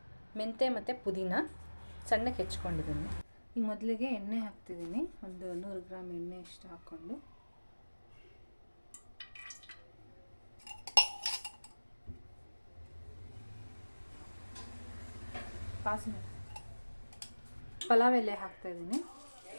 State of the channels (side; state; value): both; inverted; correlation -1.00